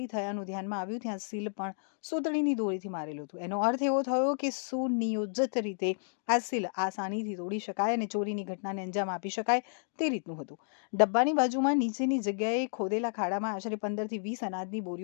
થયાનું ધ્યાનમાં આવ્યું ત્યાં સીલ પણ સૂતળીની દોરીથી મારેલું હતું। એનો અર્થ એવો થયો કે સુનિયોજિત રીતે આ સીલ આસાનીથી તોડી શકાય અને ચોરીની ઘટનાને અંજામ આપી શકાય તે રીતનું હતું। ડબ્બાની બાજુમાં નીચેની જગ્યાએ ખોદેલા ખાડામાં આશરે 15 થી 20 અનાજની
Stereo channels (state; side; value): silent; right; digital silence